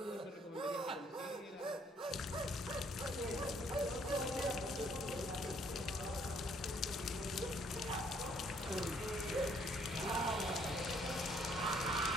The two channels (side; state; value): both; normal; correlation 0.65